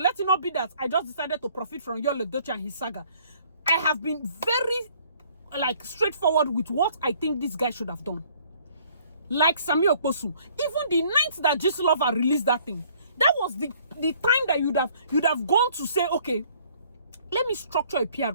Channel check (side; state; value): both; inverted; correlation -0.60